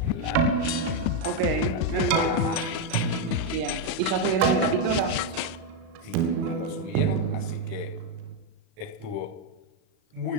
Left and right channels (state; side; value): late; left; 37 ms